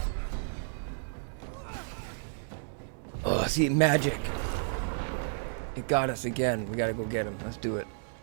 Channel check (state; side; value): silent; left; digital silence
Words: Oh, see, magic. It got us again. We gotta go get him. Let's do it.